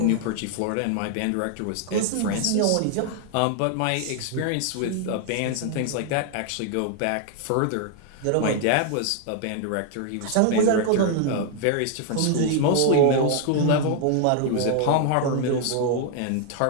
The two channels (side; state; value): both; different; correlation 0.00